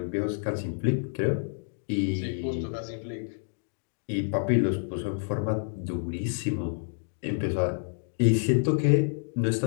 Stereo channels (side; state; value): right; silent; digital silence